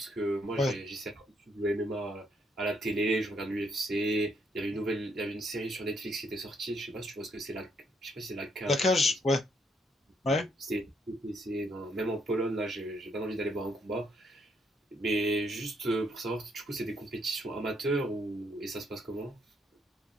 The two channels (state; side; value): normal; both; correlation 0.73